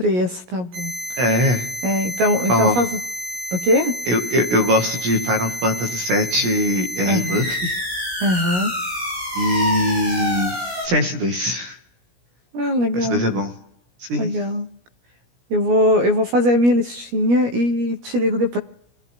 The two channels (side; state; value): left; late; 17 ms